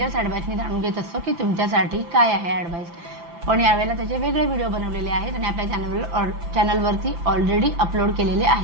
ॲडवाईसनी जाणून घेत असतो की तुमच्यासाठी काय आहे ॲडवाईस, पण यावेळेला त्याचे वेगळे व्हिडिओ बनवलेले आहेत आणि आपल्या चॅनलवरती ऑलरेडी अपलोड केलेले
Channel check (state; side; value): late; left; 5.9 ms